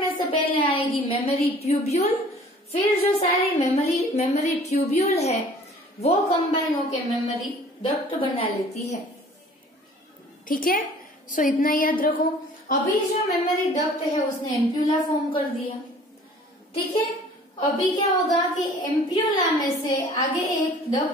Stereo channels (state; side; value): normal; both; correlation 0.51